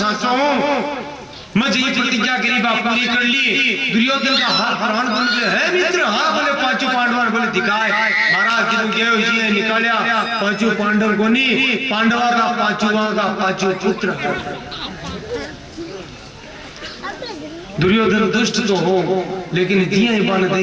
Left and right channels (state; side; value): identical; both; correlation 1.00